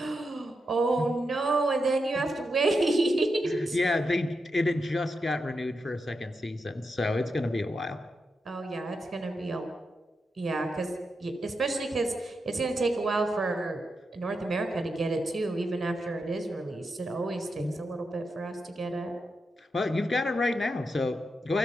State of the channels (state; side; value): normal; both; correlation 0.86